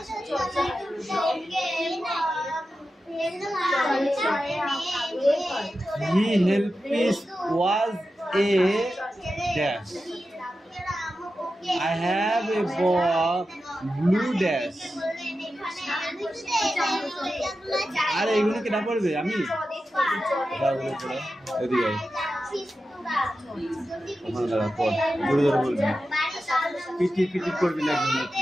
He helped was a dash. I have a ball blue dash. আরে এগুলো কি না পড়বে? আমি এদিকে ওখানে দাঁড়া, পড়, জোরে জোরে বলবি, পিটি পিটি করবি না।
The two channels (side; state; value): both; normal; correlation 0.91